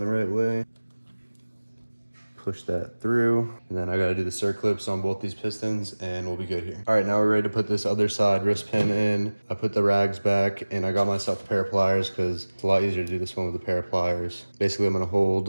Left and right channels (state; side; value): inverted; both; correlation -1.00